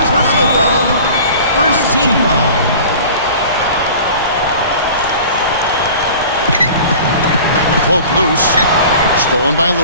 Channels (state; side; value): inverted; both; correlation -0.42